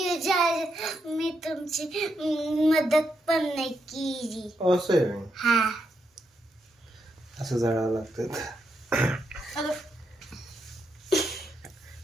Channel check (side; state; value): both; normal; correlation 0.81